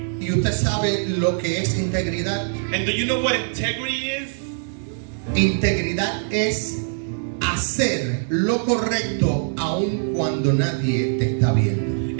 ¿Y usted sabe lo que es integridad? And do you know what integrity is? Integridad es hacer lo correcto aun cuando nadie te está viendo.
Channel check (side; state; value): left; silent; 64 dB below the other